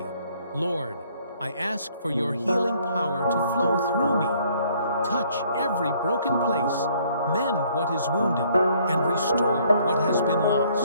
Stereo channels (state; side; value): inverted; both; correlation -0.63